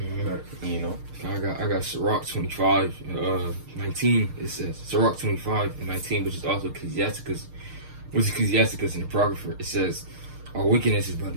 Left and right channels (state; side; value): late; left; 6.5 ms